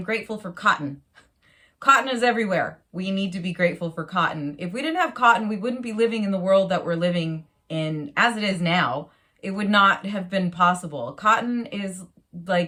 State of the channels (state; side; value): identical; both; correlation 1.00